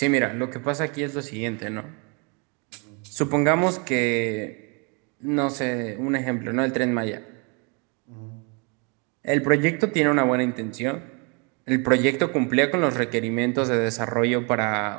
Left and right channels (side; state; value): left; quieter; 33.5 dB